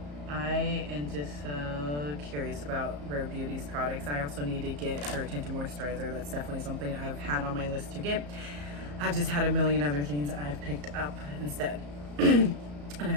I am just so curious about Rare Beauty's products. I also need to get her tinted moisturizer. That's definitely something I've had on my list to get. I've just had a million other things I've picked up instead. And I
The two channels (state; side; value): late; left; 34 ms